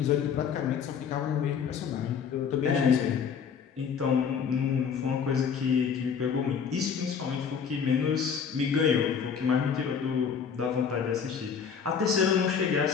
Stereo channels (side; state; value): right; quieter; 6.8 dB